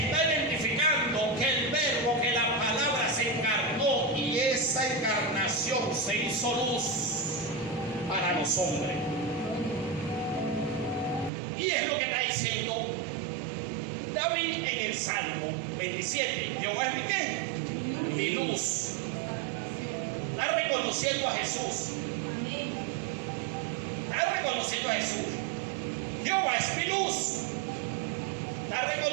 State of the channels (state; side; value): drops out; left; at 11.3 s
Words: identificando que el verbo, que la palabra se encarnó, y esa encarnación se hizo luz para los hombres. Y es lo que está diciendo David en el Salmo 27. Jehová es mi ¿qué? Mi luz. Está reconociendo a Jesús. Está reconociendo a Jesús. Jehová es mi luz. Está